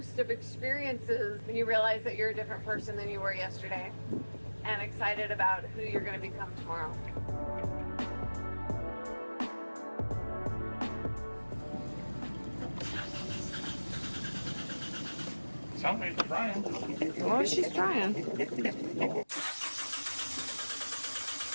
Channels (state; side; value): inverted; both; correlation -1.00